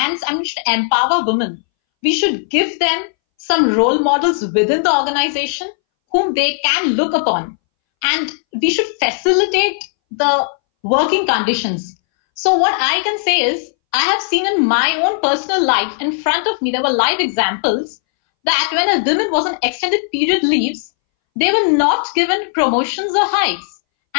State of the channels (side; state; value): right; silent; 64 dB below the other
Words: and we should empower women. We should give them some role models within the organization whom they can look upon. And we should facilitate the working conditions. So what I can say is, I have seen in my own personal life, in front of me, there were live examples that when a woman was on extended period leaves, they were not given promotions or hikes.